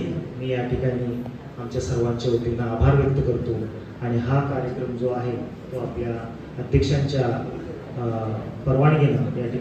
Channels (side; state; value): both; identical; correlation 1.00